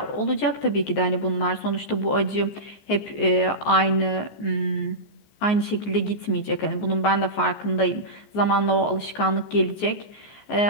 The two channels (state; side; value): late; right; 14 ms